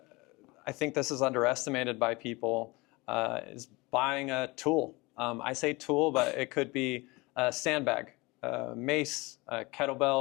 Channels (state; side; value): quieter; right; 23.9 dB